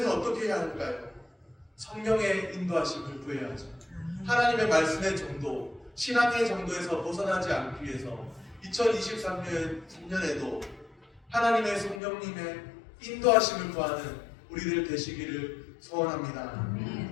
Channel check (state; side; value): drops out; right; at 12.0 s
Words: 어떻게 해야 할까요? 성령의 인도하심을 구해야죠. 하나님의 말씀의 정도, 신앙의 정도에서 벗어나지 않기 위해서 2023년에도 하나님의 성령님의 인도하심을 구하는 우리들 되시기를 소원합니다.